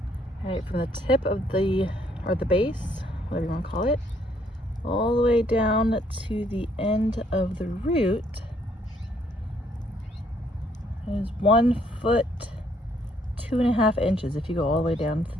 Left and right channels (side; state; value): both; normal; correlation 0.68